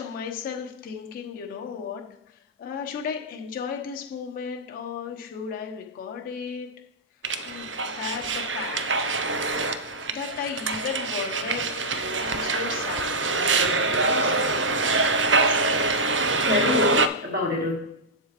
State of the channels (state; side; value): normal; both; correlation -0.09